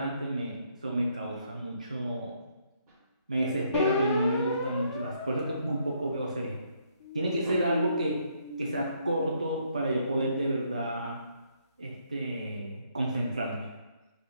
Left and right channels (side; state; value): both; inverted; correlation -0.71